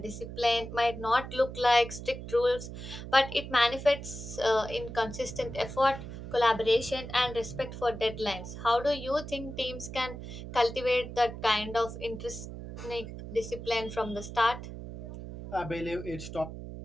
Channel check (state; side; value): noise; right; hum, 10 dB below the sound